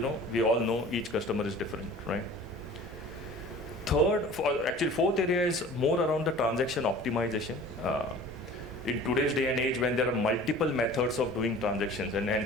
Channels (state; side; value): normal; both; correlation 0.44